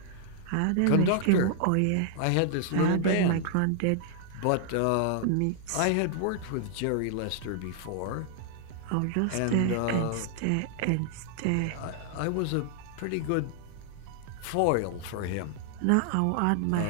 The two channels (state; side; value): different; both; correlation 0.00